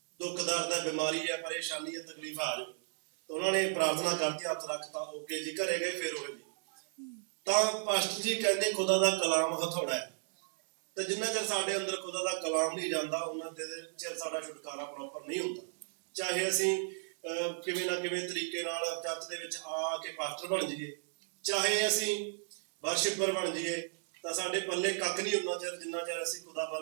ਦੁੱਖ ਦਰਦ ਹੈ, ਬਿਮਾਰੀ ਹੈ, ਪਰੇਸ਼ਾਨੀ ਹੈ, ਤਕਲੀਫ ਆ ਜਾਓ। ਤਾਂ ਉਹਨਾਂ ਨੇ ਪ੍ਰਾਰਥਨਾ ਕਰਤੀ, ਹੱਥ ਰੱਖਤਾ, ਓਕੇ ਜੀ, ਘਰੇ ਗਏ, ਫਿਰ ਉਹ ਜੀ। ਤਾਂ ਪਾਸਟਰ ਜੀ ਕਹਿੰਦੇ ਖੁਦਾ ਦਾ ਕਲਾਮ ਹਥੌੜਾ ਹੈ। ਤੇ ਜਿੰਨਾ ਚਿਰ ਸਾਡੇ ਅੰਦਰ ਖੁਦਾ ਦਾ ਕਲਾਮ ਨਹੀਂ ਜਾਂਦਾ ਉਹਨਾਂ ਚਿਰ ਸਾਡਾ ਛੁਟਕਾਰਾ ਪ੍ਰੋਪਰ ਨਹੀਂ ਹੁੰਦਾ। ਚਾਹੇ ਅਸੀਂ ਕਿਵੇਂ ਨਾ ਕਿਵੇਂ ਤਰੀਕੇ ਨਾਲ ਚਰਚ ਦੇ ਵਿੱਚ ਆ ਕੇ ਪਾਸਟਰ ਬਣ ਜਾਈਏ, ਚਾਹੇ ਅਸੀਂ ਵਰਸ਼ਿਪਰ ਬਣ ਜਾਈਏ, ਤਾਂ ਸਾਡੇ ਪੱਲੇ ਕੱਖ ਨਹੀਂ ਹੁੰਦਾ ਚਿਰ ਜਿੰਨਾ ਚਿਰ ਅਸੀਂ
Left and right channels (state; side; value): silent; left; digital silence